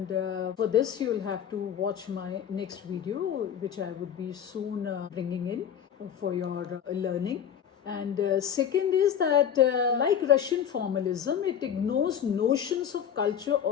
for this you'll have to watch my next video, which I would be soon bringing in for your learning. And second is that like Russian formalism, it ignores notions of culture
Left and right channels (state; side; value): quieter; right; 8.8 dB